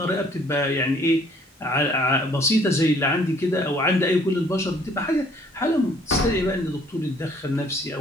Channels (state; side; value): normal; both; correlation 0.59